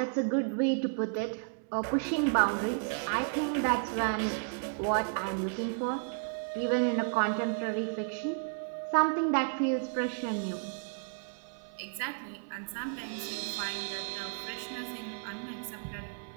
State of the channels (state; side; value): silent; left; digital silence